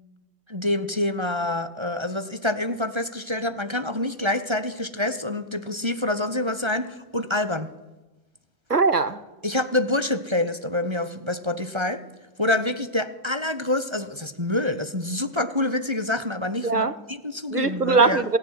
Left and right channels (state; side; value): late; left; 1.3 ms